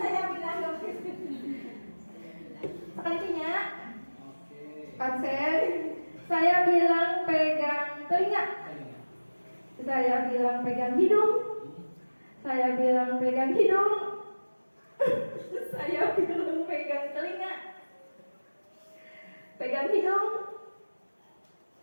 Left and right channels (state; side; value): inverted; both; correlation -1.00